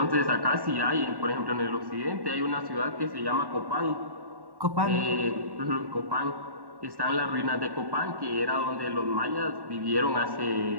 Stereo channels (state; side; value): late; left; 1.1 ms